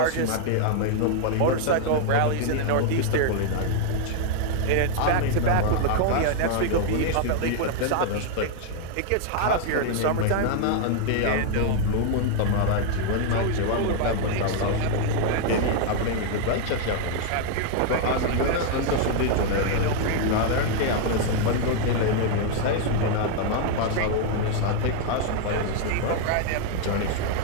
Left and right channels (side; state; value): both; different; correlation 0.00